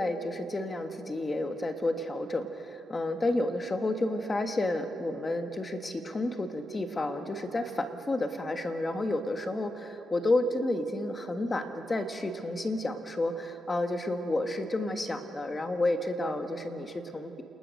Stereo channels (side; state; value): both; normal; correlation 0.88